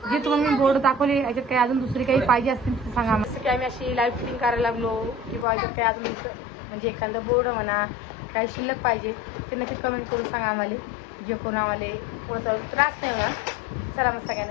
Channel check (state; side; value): drops out; right; at 5.5 s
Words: जे तुम्हाला मी बोर्ड दाखवले याच्यात काही अजून दुसरी काही पाहिजे असतील तर सांगा. जसं की आम्ही अशी लाईव्ह फिटिंग करायला लागलो किंवा याच्यात काही अजून म्हणजे एखादं बोर्ड म्हणा काही शिल्लक पाहिजे ते नक्की कमेंट करून सांगा आम्हाला. जे कोण आम्हाला पुढे चालू त्रास नाही होणार. चला मग